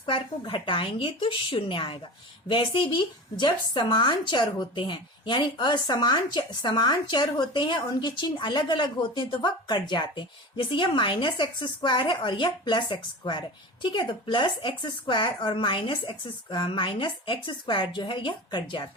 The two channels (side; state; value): both; normal; correlation 0.31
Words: को घटाएंगे तो शून्य आएगा। वैसे भी जब समान चर होते हैं यानी समान चर होते हैं, उनके चिन्ह अलग अलग होते हैं तो वह कट जाते हैं। जैसे यह माइनस एक्स स्क्वायर है और यह प्लस एक्स स्क्वायर है। ठीक है, तो प्लस एक्स स्क्वायर और माइनस एक्स स्क्वायर जो है यह कट